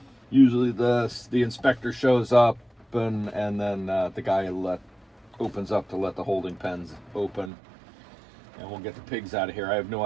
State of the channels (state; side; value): drops out; left; at 7.5 s